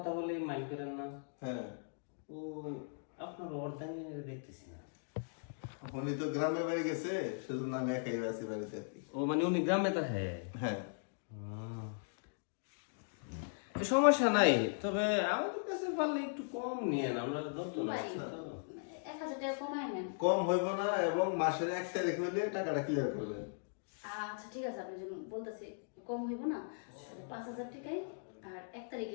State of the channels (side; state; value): right; silent; digital silence